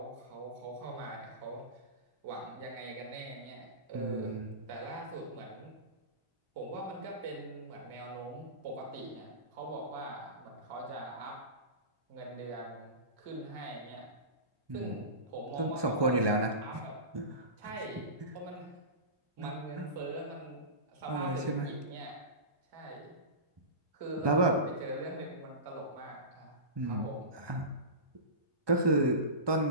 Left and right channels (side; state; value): left; late; 1.2 ms